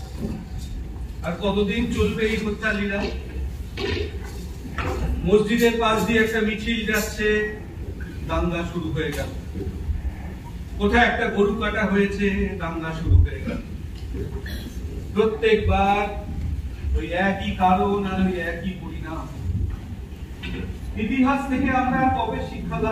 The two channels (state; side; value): identical; both; correlation 1.00